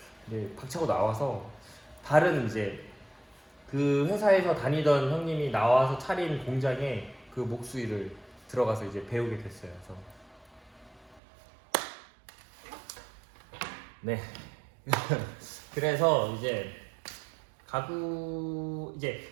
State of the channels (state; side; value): drops out; left; at 11.2 s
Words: 이제 박차고 나와서 다른 이제 그 회사에서 다니던 형님이 나와서 차린 공장에 그 목수 일을 들어가서 이제 배우게 됐어요. 그래서 네. 그래서 이제 가구 이제